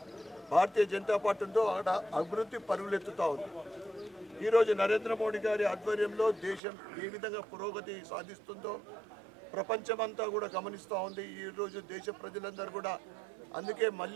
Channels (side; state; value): left; drops out; at 6.6 s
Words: భారతీయ జనతా పార్టీ ఉందో అక్కడ అభివృద్ధి పరుగులెత్తుతూ ఉంది. ఈరోజు నరేంద్ర మోడీ గారి ఆధ్వర్యంలో దేశం ఏ విధంగా పురోగతి సాధిస్తుందో ప్రపంచమంతా కూడా గమనిస్తూ ఉంది. ఈరోజు దేశ ప్రజలందరూ కూడా అందుకే